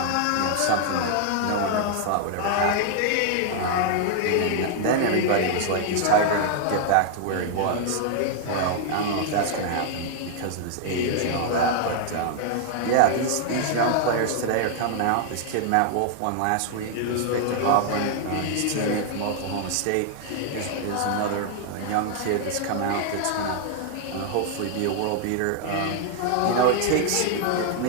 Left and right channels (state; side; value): different; both; correlation 0.00